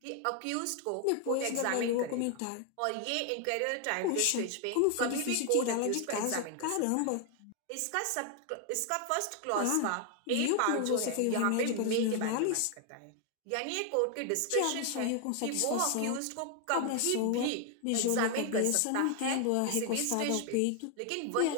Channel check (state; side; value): different; both; correlation 0.00